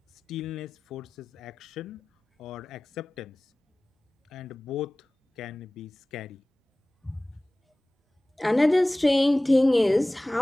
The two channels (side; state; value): both; normal; correlation 0.98